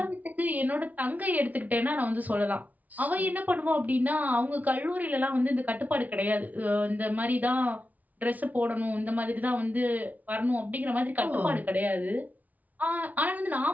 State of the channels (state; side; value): late; left; 0.076 ms